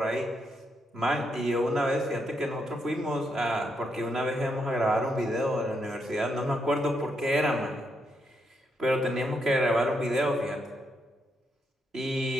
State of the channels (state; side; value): normal; both; correlation 0.79